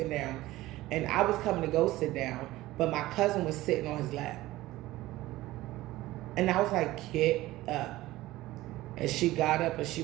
down, and I was coming to go sit down, but my cousin was sitting on his lap. And I was like, get up. And she got up and she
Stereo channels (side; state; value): left; quieter; 17.2 dB